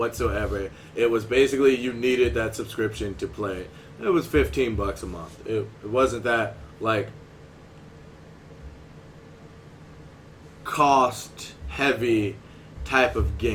It was basically you needed that subscription to play. It was $15 a month. It wasn't that like cost-heavy type of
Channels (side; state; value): both; identical; correlation 1.00